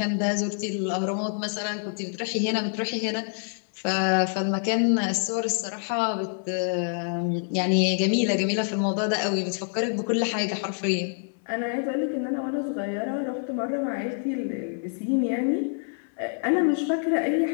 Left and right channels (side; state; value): right; silent; 57 dB below the other